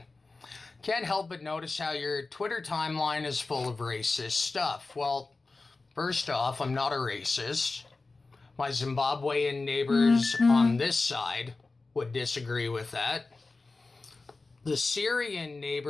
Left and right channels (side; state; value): right; quieter; 3.6 dB